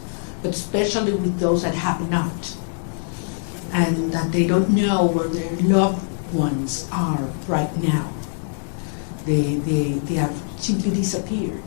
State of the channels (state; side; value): silent; right; digital silence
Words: but especially with those that have not, and that they don't know where their loved ones are right now. They have simply disappeared.